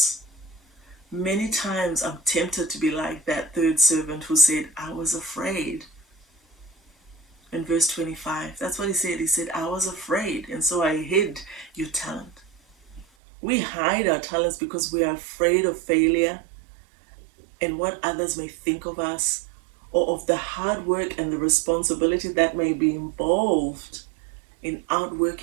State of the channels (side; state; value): left; drops out; at 13.1 s